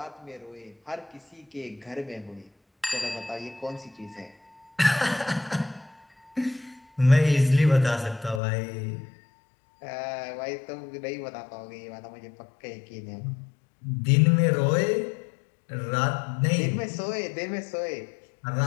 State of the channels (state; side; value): drops out; right; at 8.4 s